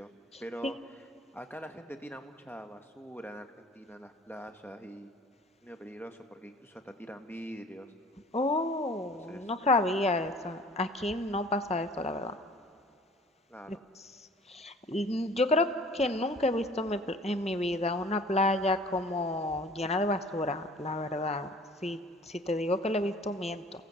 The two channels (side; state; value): both; normal; correlation 0.50